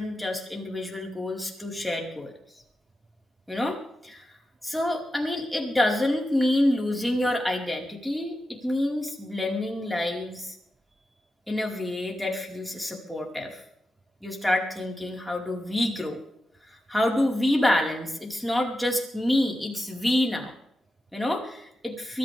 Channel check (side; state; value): both; normal; correlation 0.90